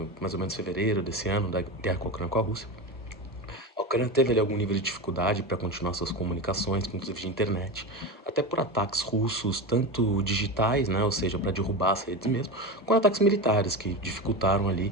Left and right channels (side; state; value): both; normal; correlation 0.22